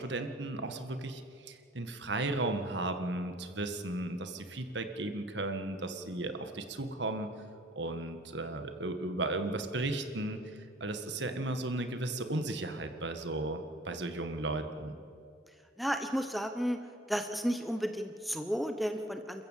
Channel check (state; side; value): normal; both; correlation 0.51